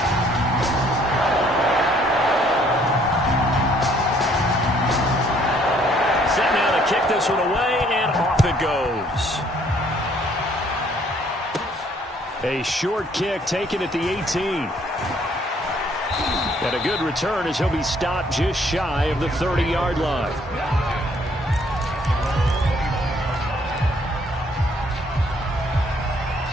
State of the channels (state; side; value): normal; both; correlation 0.63